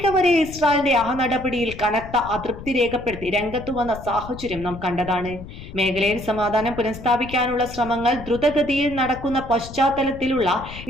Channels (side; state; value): left; noise; rumble, 13 dB below the sound